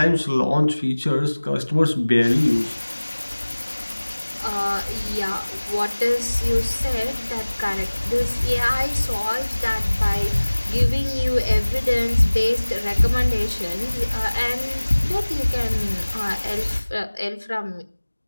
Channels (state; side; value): inverted; both; correlation -1.00